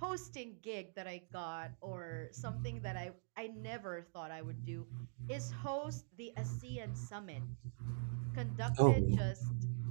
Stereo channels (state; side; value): silent; left; digital silence